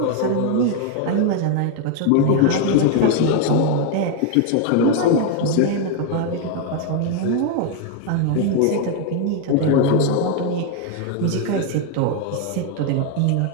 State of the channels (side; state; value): both; different; correlation 0.01